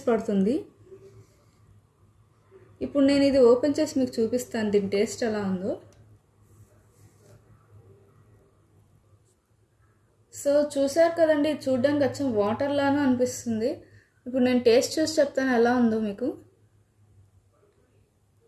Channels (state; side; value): identical; both; correlation 1.00